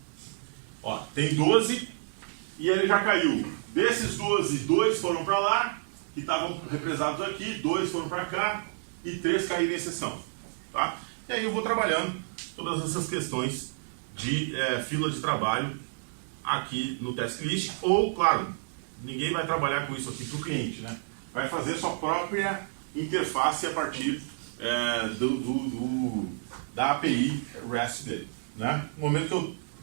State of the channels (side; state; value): left; silent; digital silence